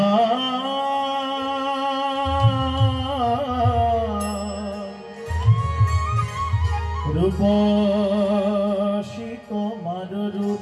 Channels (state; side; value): identical; both; correlation 1.00